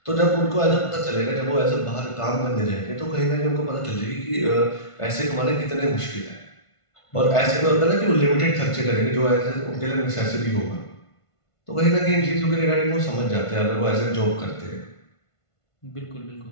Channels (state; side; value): late; right; 1.5 ms